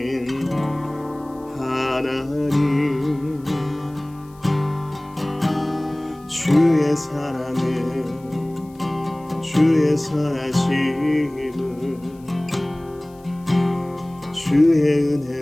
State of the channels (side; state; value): left; noise; hiss, 29 dB below the sound